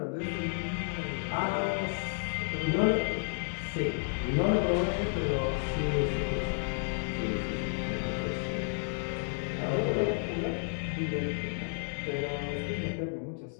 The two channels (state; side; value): silent; right; digital silence